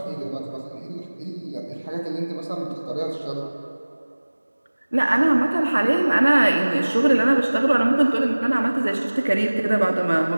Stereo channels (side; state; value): both; inverted; correlation -1.00